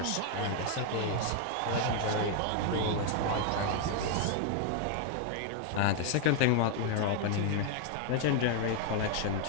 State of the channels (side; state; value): both; different; correlation 0.00